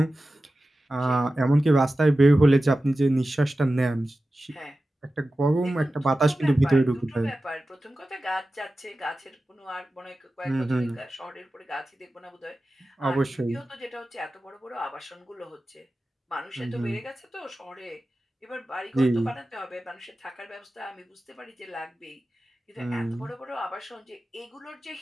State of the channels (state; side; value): normal; both; correlation 0.94